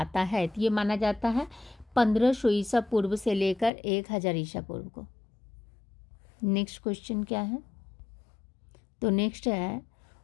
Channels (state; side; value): drops out; right; at 3.7 s